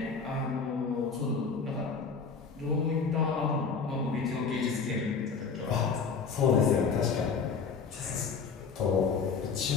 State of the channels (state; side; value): quieter; right; 5.4 dB